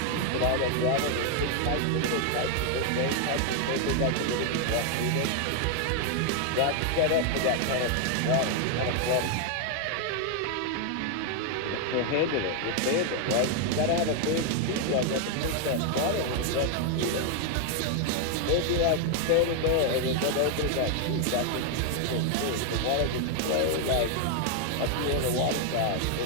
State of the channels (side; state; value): both; different; correlation 0.00